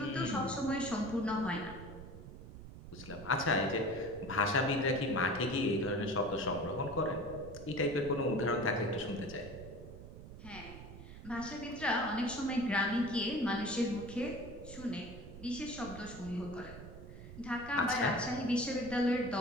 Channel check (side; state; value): right; noise; rumble, 13 dB below the sound